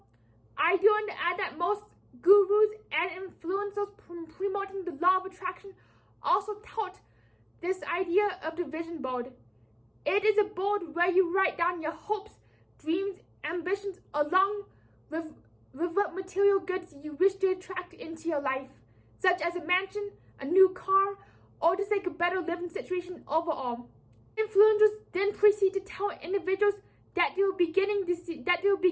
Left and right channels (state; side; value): identical; both; correlation 1.00